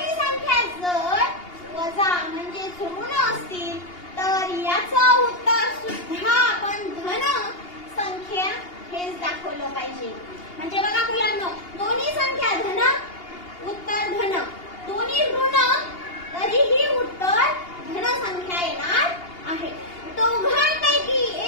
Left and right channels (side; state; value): right; late; 2.8 ms